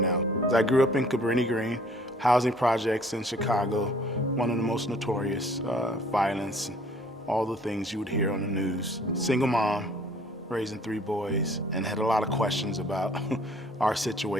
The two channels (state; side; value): normal; both; correlation 0.56